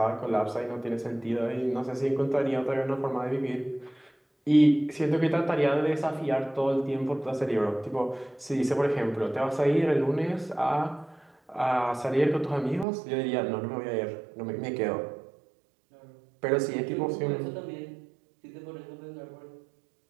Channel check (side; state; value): left; drops out; at 12.9 s